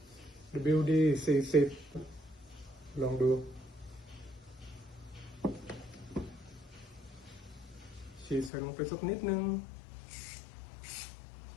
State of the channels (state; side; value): drops out; right; at 8.5 s